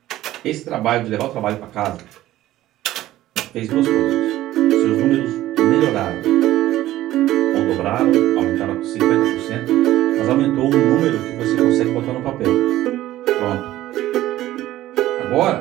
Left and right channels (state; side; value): quieter; left; 14.8 dB